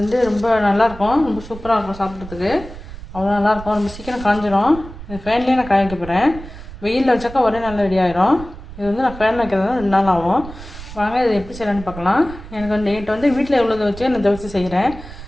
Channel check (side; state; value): right; noise; rumble, 14 dB below the sound